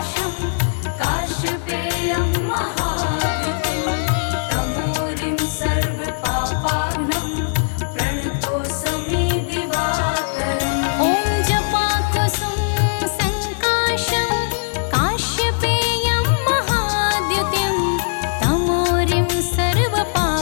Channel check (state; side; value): silent; right; digital silence